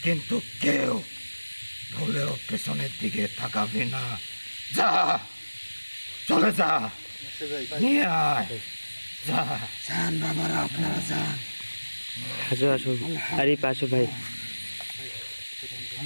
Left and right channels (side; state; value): both; inverted; correlation -1.00